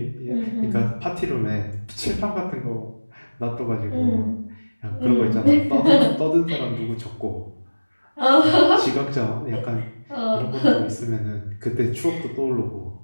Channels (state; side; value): inverted; both; correlation -1.00